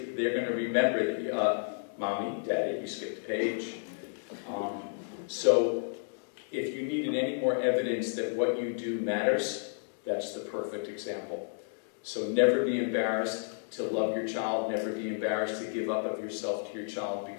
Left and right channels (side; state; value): right; silent; digital silence